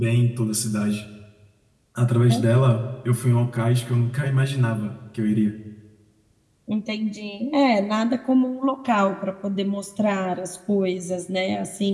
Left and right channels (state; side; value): identical; both; correlation 1.00